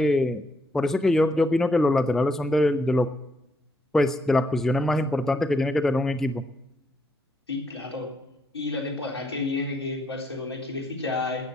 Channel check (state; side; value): normal; both; correlation 0.76